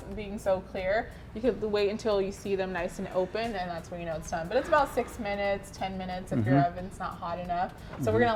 being so clear, you could wait until you see them nice and open, and that's when you know it's done. But it's about 6 minutes, 10 minutes if your oven's not hot enough. So we're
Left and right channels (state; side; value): identical; both; correlation 1.00